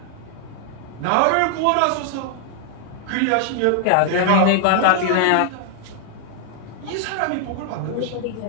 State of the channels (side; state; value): both; different; correlation 0.00